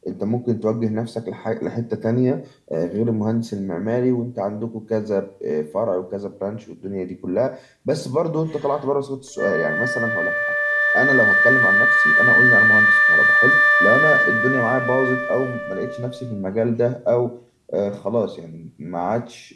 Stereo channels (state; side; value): identical; both; correlation 1.00